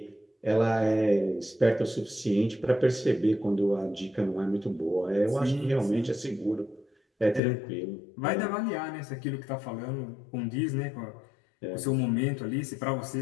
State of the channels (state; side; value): drops out; right; at 7.4 s